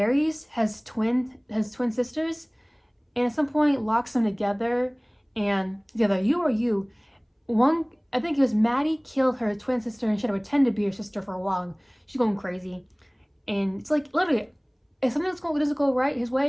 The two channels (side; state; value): both; identical; correlation 1.00